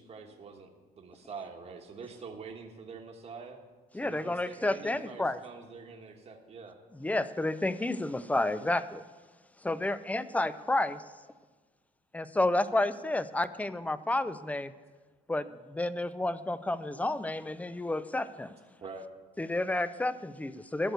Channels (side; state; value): both; normal; correlation 0.88